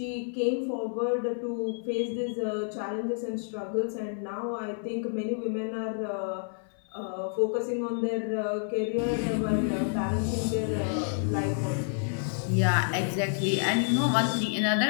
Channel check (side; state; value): right; silent; 58 dB below the other